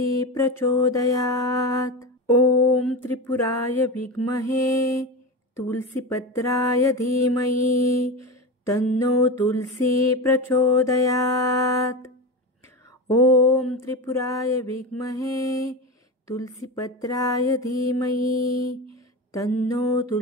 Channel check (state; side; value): normal; both; correlation 0.22